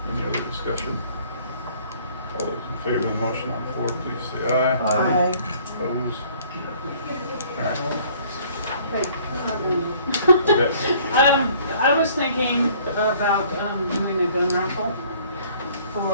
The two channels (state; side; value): inverted; both; correlation -0.57